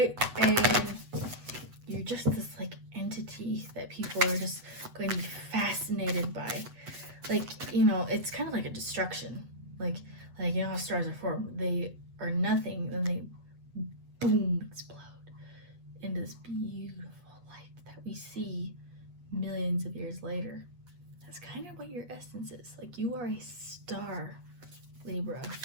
and you're just this, like, entity that people are just going to be fascinated by. Like, you know, it's kind of like a destruction. Like, you know how stars are formed? They are nothing, then they, boom, explode into this beautiful light that we see millions of years later. That's kind of what your essence is. Like, you are a star, Libra.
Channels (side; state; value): left; late; 8.1 ms